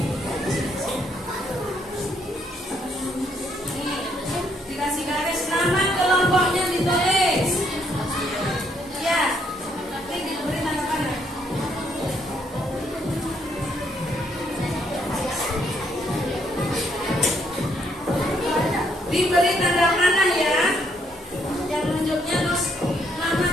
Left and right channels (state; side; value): normal; both; correlation 0.71